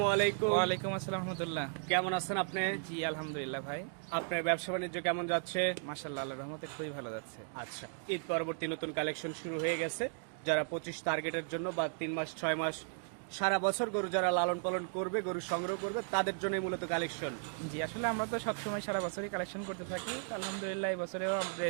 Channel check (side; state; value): left; silent; 54 dB below the other